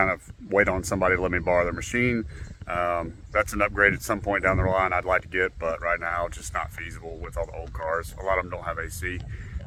of wait on somebody to let me borrow their machine. That's an upgrade at some point down the line I'd like to get, but right now it's just not feasible with all the old cars. A lot of them don't have AC,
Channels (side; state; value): both; identical; correlation 1.00